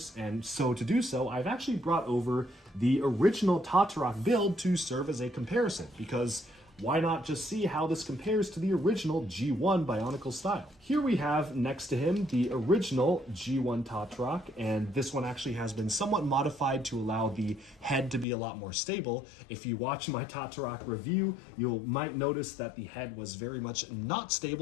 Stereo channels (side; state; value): right; drops out; at 18.2 s